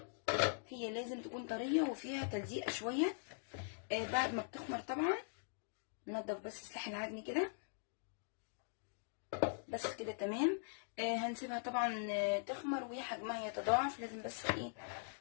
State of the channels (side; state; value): right; silent; digital silence